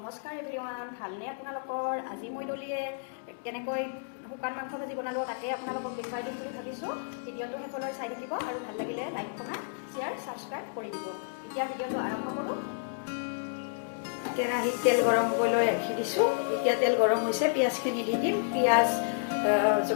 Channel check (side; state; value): right; silent; digital silence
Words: এভৰিৱান, ভালনে আপোনালোকৰ? আজি মই দলিয়ে কেনেকৈ শুকান মাংস ভাজি বনালোঁ তাকে আপোনালোকক দেখুৱাই দিম বুলি ভাবিছোঁ। ভিডিঅ'টো শেষলৈ চাই থাকিব আৰু ভাল লাগিলে লাইক কমেণ্ট শ্বেয়াৰ ছাবস্ক্ৰাইব কৰি দিব। এতিয়া ভিডিঅ'টো আৰম্ভ কৰোঁ। কেৰাহীত তেল গৰম কৰিবলৈ ৰাখি দিছোঁ। এতিয়া তেল গৰম হৈছে, পিঁয়াজখিনি দি দিম। পিঁয়াজ